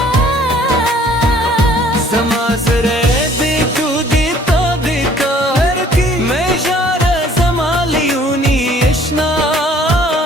समाजरे दे तू देता देता हर की मैं जारा जमालियूनी इश्ना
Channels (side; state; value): both; normal; correlation 0.57